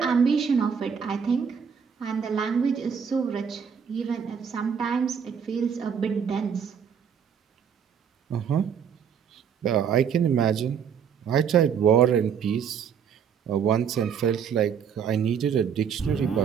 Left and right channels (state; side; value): quieter; left; 7.3 dB